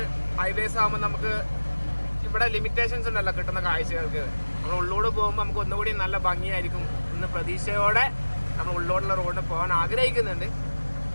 ഹൈവേസ് ആകുമ്പോൾ നമുക്ക് ഇവിടെ ലിമിറ്റേഷൻസ് ഉണ്ടല്ലോ കിട്ടുന്ന കാഴ്ചകൾക്ക്. നമ്മൾ ഉള്ളോട് പോകുമ്പോൾ നമുക്ക് ഒന്നുകൂടി നല്ല ഭംഗിയായിരിക്കും എന്ന പ്രതീക്ഷയോടെ നമ്മൾ ഉള്ളോടുള്ള റോഡിന് പോകാൻ ആഗ്രഹിക്കുന്നുണ്ട്.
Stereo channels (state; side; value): inverted; both; correlation -1.00